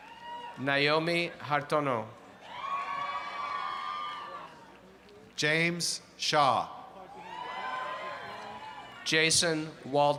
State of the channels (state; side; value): identical; both; correlation 1.00